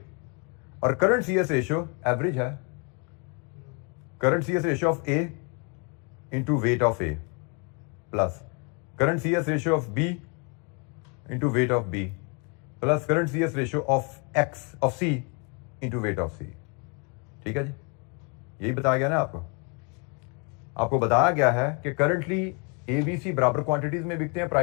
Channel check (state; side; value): quieter; right; 34.9 dB